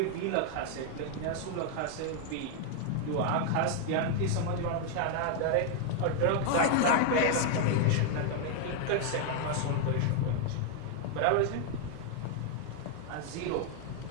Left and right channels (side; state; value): both; different; correlation 0.00